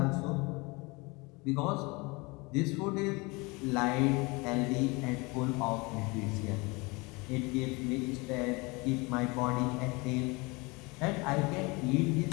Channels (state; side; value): quieter; right; 26.1 dB